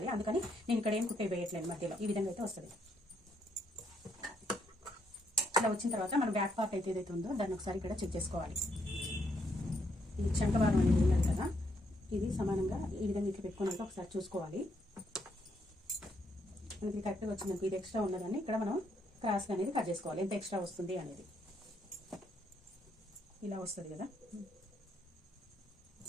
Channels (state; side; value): normal; both; correlation 0.74